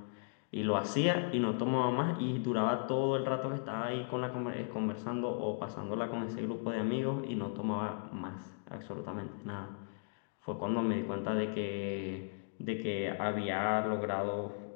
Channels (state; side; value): silent; right; digital silence